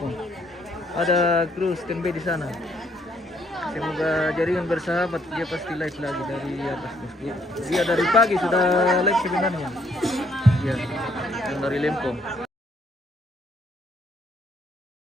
Ada kru standby di sana. Semoga jaringan bersahabat. Dia pasti live lagi dari atas. Dia dari pagi sudah live sebenarnya. Ya, yang dari lempo.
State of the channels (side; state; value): both; normal; correlation 0.69